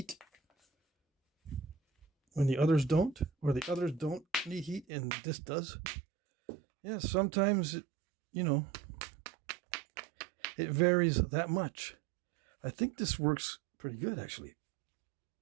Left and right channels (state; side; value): drops out; left; at 4.9 s